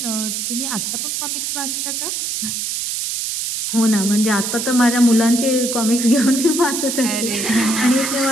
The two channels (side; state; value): right; noise; hiss, 3 dB below the sound